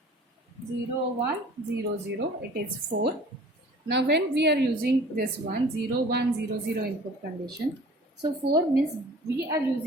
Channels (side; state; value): both; normal; correlation 0.47